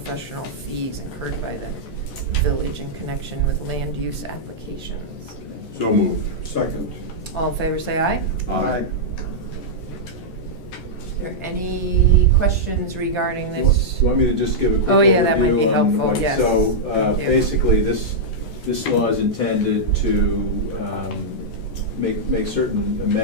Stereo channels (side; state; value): right; late; 14 ms